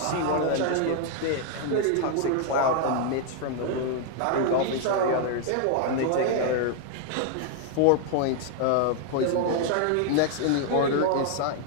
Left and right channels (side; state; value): both; different; correlation 0.00